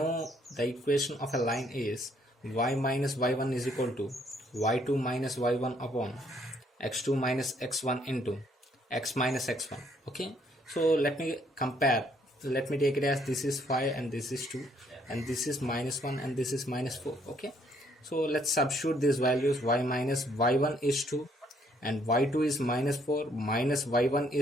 the equation of a line is y minus y1 is equal to y2 minus y1 upon x2 minus x1 into x minus x1. Okay, so let me compare. Let me take it as this is 5 and this is 2 and this is minus 1 and this is minus 4. Okay, so let's substitute these values. Y minus y1 is 2 and y2 is minus 4, minus y1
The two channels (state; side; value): normal; both; correlation 0.67